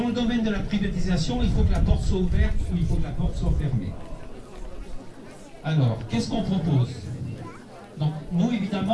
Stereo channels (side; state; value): both; identical; correlation 1.00